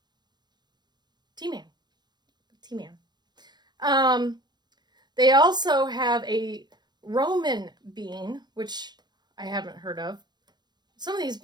T-Man. They also have a Roman bean, which I haven't heard of. Some of these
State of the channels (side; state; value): left; late; 0.21 ms